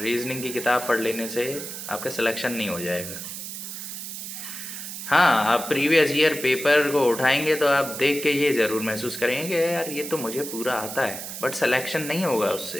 की किताब पढ़ लेने से आपका सिलेक्शन नहीं हो जाएगा। हाँ, आप प्रीवियस ईयर पेपर को उठाएंगे तो आप देख के ये ज़रूर महसूस करेंगे कि यार ये तो मुझे पूरा आता है, बट सिलेक्शन नहीं होगा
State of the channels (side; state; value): right; noise; hiss, 8 dB below the sound